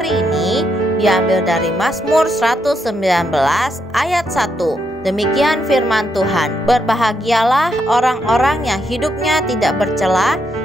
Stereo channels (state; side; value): normal; both; correlation 0.79